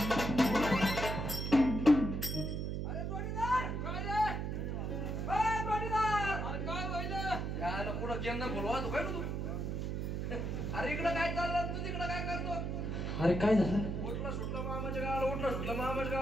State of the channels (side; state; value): right; noise; hum, 2 dB below the sound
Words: बोलवा तू काय तू अरे इकडं काय चाललं तू तिकडं काय करतो अरे काय झालं उठला सुटला मामाच्या गावाला उठला सुटला मामाच्या